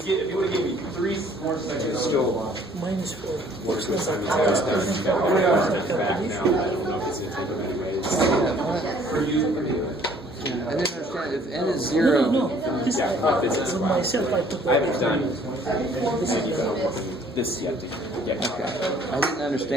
you would have given me 3 more seconds, still Minus 4. Most of the time, for you. I didn't understand. If n is 0, No. This for myself, I put I haven't done this yet. okay. I didn't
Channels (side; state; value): both; normal; correlation 0.58